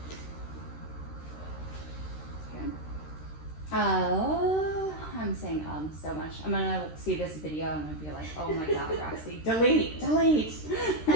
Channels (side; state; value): right; late; 13 ms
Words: I'm saying so much. I'm gonna see this video and I'm gonna be like, oh my god, Roxy, delete.